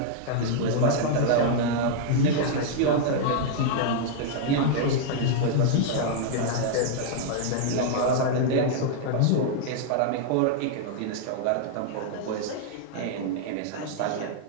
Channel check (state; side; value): different; both; correlation -0.01